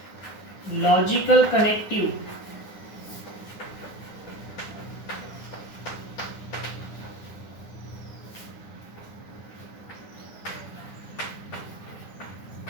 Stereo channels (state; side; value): late; right; 9.9 ms